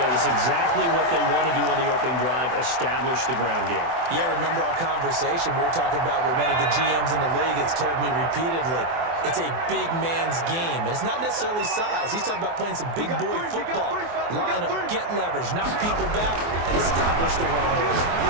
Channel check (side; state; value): left; late; 24 ms